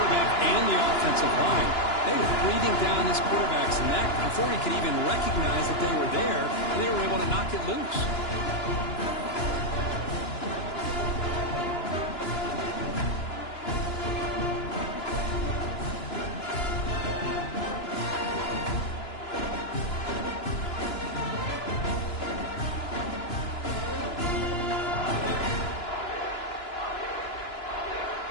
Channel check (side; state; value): right; late; 2.9 ms